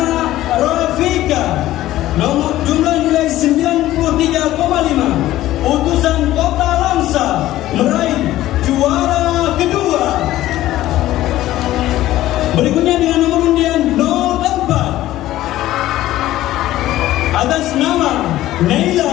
Rafika, nomor jumlah nilai 93,5, utusan Kota Langsa meraih juara kedua. Berikutnya dengan nomor undian 04 atas nama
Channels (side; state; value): right; quieter; 14.8 dB